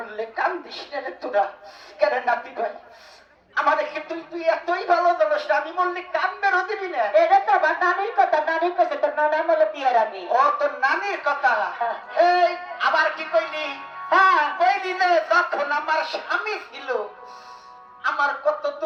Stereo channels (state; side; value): identical; both; correlation 1.00